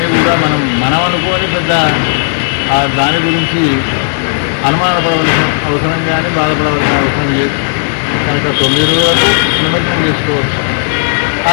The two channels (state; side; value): silent; right; digital silence